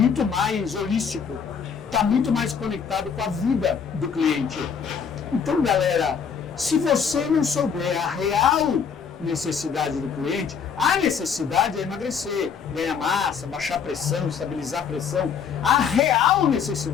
mais holístico, está muito mais conectado com a vida do cliente. Então, galera, se você não souber a real necessidade do cliente, a necessidade é emagrecer, ganhar massa, baixar a pressão, estabilizar a pressão. A real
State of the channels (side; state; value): right; quieter; 6.7 dB